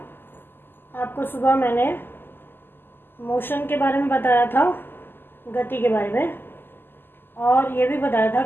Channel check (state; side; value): late; right; 0.097 ms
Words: आपको सुबह मैंने मोशन के बारे में बताया था, गति के बारे में, और ये भी बताया था